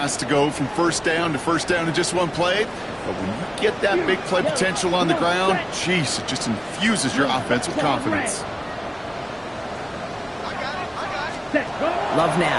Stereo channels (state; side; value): identical; both; correlation 1.00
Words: to go from first down in just one play. But when you get that big play potential on the ground, geez, it just infuses your offense with confidence. Love